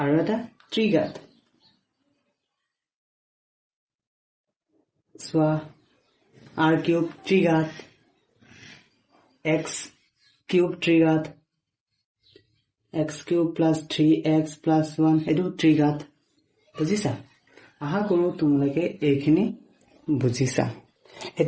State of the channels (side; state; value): both; identical; correlation 1.00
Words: আৰু এটা ত্ৰিঘাত চোৱা r কিউব ত্ৰিঘাত x কিউব ত্ৰিঘাত x cube plus 3x plus 1 এইটো ত্ৰিঘাত বুজিছা আহা কৰো তোমালোকে এইখিনি বুজিছা